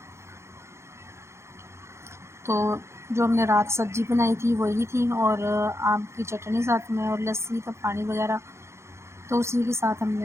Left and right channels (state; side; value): late; left; 0.13 ms